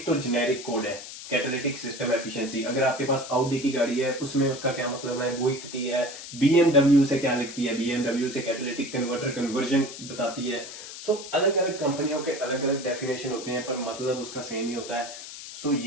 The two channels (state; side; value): noise; left; hiss, 12 dB below the sound